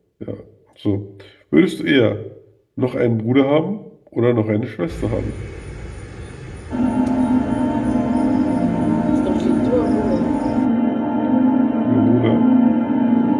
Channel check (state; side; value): identical; both; correlation 1.00